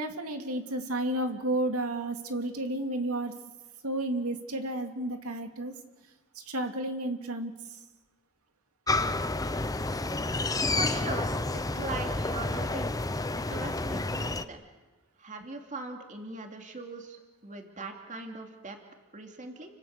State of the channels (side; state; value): both; normal; correlation 0.31